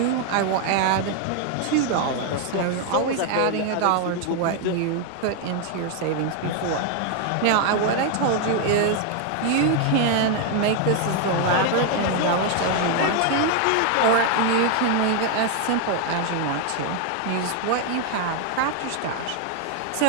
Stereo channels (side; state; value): both; different; correlation 0.00